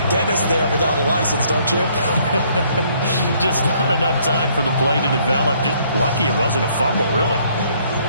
dentist there without a license, don't you? Just not enough time for the play to develop. Just lucky it wasn't a fumble, really.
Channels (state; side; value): inverted; both; correlation -0.65